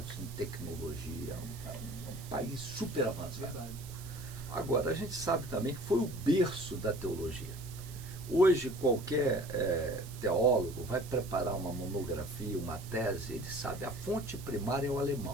em tecnologia, um país super avançado. Verdade. Agora, a gente sabe também que foi o berço da teologia. Hoje, qualquer teólogo vai preparar uma monografia, uma tese, ele sabe, a fonte primária é o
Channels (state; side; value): noise; right; hiss, 16 dB below the sound